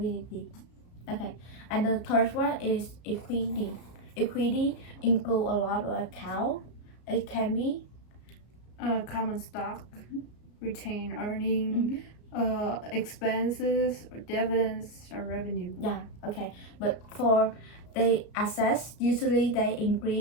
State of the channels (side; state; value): right; late; 33 ms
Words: Okay, and the third one is equity. Equity include a lot of account. It can be Common stock, retained earning, expenses, or dividends, or revenue. yeah. Okay, but for the assets, usually they